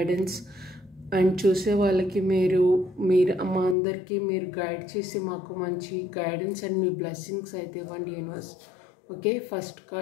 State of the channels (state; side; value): drops out; right; at 3.8 s